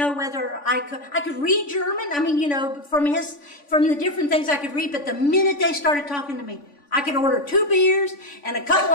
whether I could read German. I mean, from the different things I could read. But the minute they started talking to me, I could order 2 beers and a couple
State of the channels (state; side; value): late; right; 3.5 ms